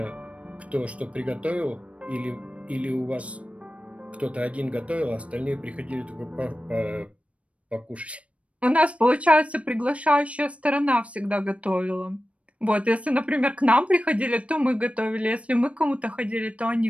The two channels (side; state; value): left; late; 0.063 ms